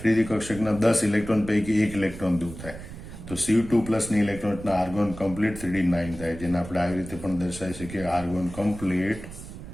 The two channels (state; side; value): noise; right; rumble, 13 dB below the sound